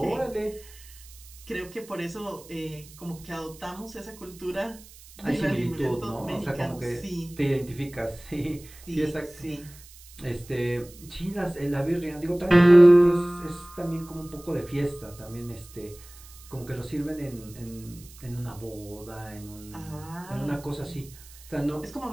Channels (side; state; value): right; noise; hiss, 21 dB below the sound